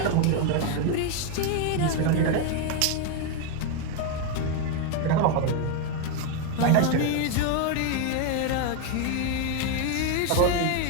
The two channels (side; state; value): both; different; correlation 0.01